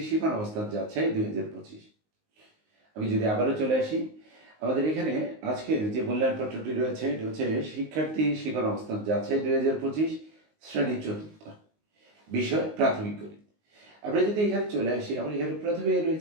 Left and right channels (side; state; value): left; late; 19 ms